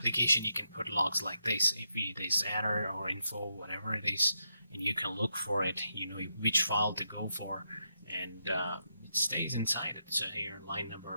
you can put logs like this. If it is error or info, whatever it is, and you can look for it, you know which file to go for, and it stays inside it. So here line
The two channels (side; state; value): both; inverted; correlation -0.83